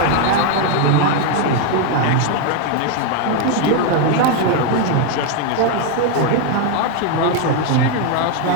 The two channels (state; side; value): different; both; correlation 0.01